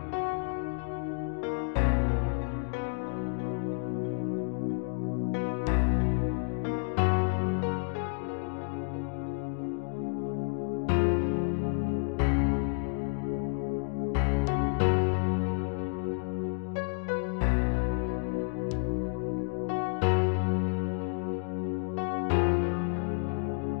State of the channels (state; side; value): silent; right; digital silence